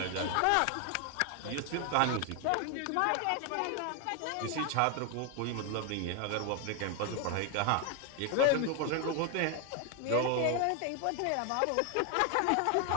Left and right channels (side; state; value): both; different; correlation 0.01